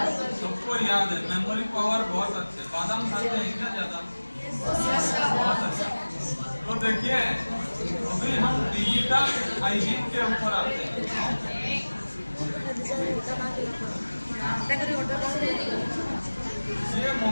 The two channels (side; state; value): both; inverted; correlation -1.00